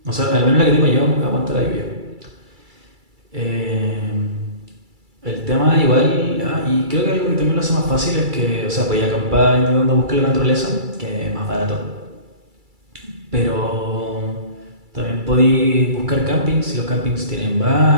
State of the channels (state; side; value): late; left; 2.3 ms